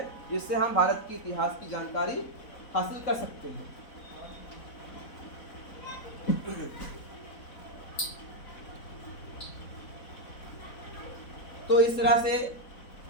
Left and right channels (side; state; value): right; late; 4.0 ms